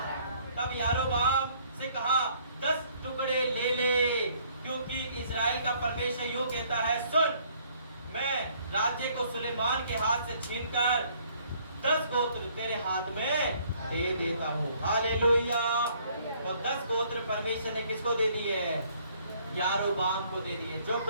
तब यारोबाम से कहा, 10 टुकड़े ले ले, क्योंकि इजराइल का परमेश्वर यूं कहता है, सुन, मैं राज्य को सुलेमान के हाथ से छीनकर 10 गोत्र तेरे हाथ में दे देता हूँ। हालेलुया। और 10 गोत्र परमेश्वर ने किसको दे दिए? यारोबाम को दे दिए, जो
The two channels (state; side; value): inverted; both; correlation -0.62